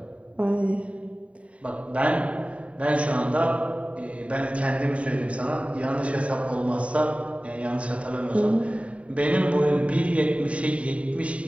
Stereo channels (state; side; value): late; left; 0.065 ms